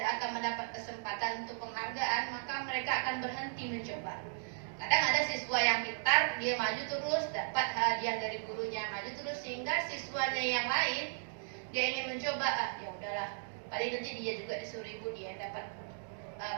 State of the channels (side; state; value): left; silent; digital silence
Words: akan mendapat kesempatan untuk penghargaan, maka mereka akan berhenti mencoba. Kadang ada siswa yang pintar, dia maju terus, dapat hadiah dari gurunya, maju terus, sehingga siswanya yang lain, dia ingin mencoba, ya udahlah, paling nanti dia juga disuruh ibu dia dapat